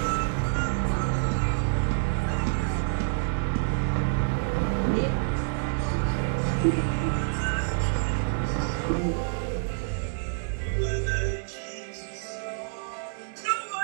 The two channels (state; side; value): silent; left; digital silence